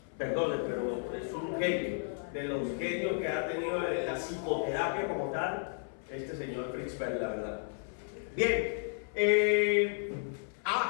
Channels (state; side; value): silent; right; 56 dB below the other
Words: perdone, pero es un genio. De los genios que ha tenido la psicoterapia como tal, este señor Fritz Perls, la verdad. Bien,